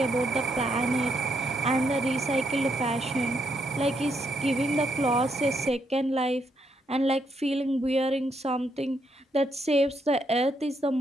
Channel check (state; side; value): normal; both; correlation 0.76